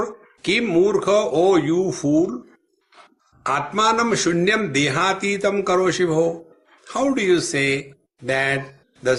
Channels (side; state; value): both; identical; correlation 1.00